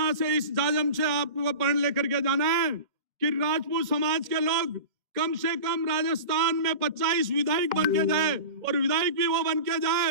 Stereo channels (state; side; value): late; left; 2.1 ms